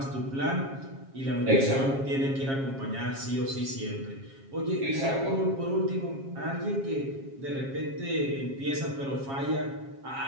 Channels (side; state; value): left; late; 7.4 ms